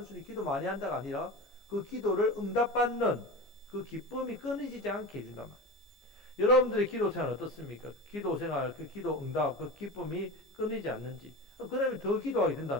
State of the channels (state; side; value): normal; both; correlation 0.28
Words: 기도 많이 한다가 아니라 그 기도를 응답받는 그 기쁨이 끊이지 않게 해준단 말이에요. 여러분들의 기도 생활 어떻습니까? 기도 생활, 그 기도 응답, 그 기쁨이 끊이지 않는지. 그러면 더 기도하게